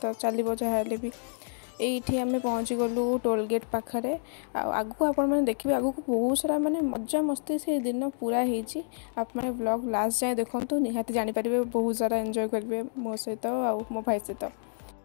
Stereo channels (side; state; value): right; silent; digital silence